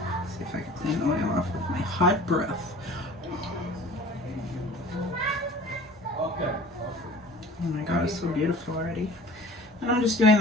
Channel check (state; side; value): normal; both; correlation 0.45